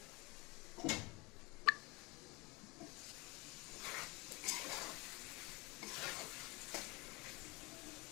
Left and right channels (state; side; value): quieter; right; 26.0 dB